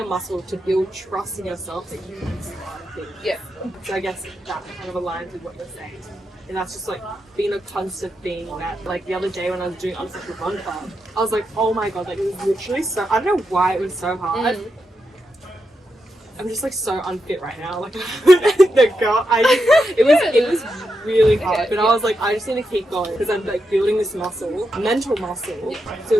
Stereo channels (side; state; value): both; normal; correlation 0.85